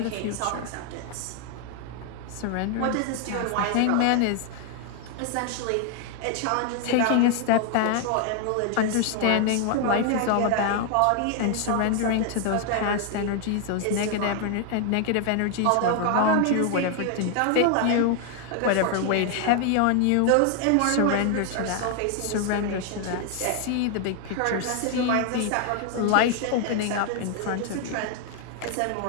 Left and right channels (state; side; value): different; both; correlation 0.00